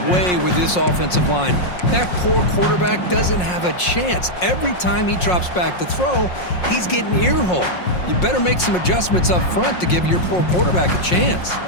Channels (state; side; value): late; right; 5.6 ms